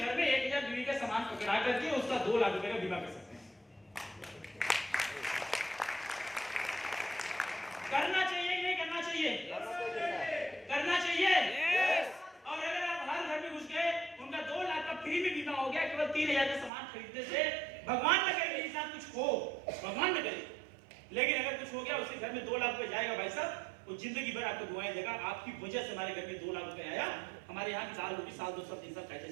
में 1000 बीवी का सामान पकड़ा करके उसका 2 लाख रुपए का बीमा कर सकते हैं। करना चाहिए कि नहीं करना चाहिए? करना चाहिए। और अगर आप हर घर में घुस गए, उनका 2 लाख का फ्री में बीमा हो गया केवल 3,000 का सामान खरीदने से, भगवान न करे मेरे साथ कुछ हो, भगवान न करे, लेकिन अगर कुछ हो गया उसके घर में 2 लाख रुपए जाएगा भाई साहब, वो जिंदगी भर आपको दुआएं देगा, आपकी वजह से हमारे घर में 2 लाख रुपए आया, हमारे यहाँ की साल होगी, साल 2 साल 3 साल कैसे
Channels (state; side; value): drops out; left; at 16.7 s